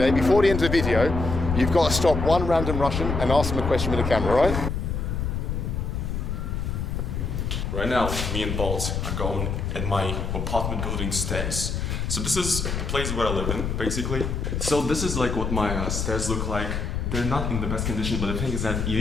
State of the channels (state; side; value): noise; left; rumble, 2 dB below the sound